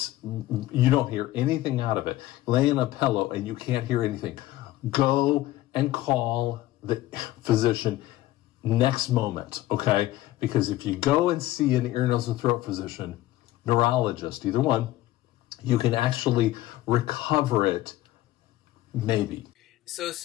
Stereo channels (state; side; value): quieter; right; 15.9 dB